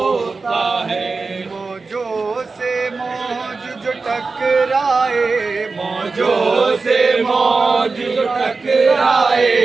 ہے، موجوں سے موج جو ٹکرائے، موجوں سے موج جو ٹکرائے،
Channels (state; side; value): quieter; left; 4.1 dB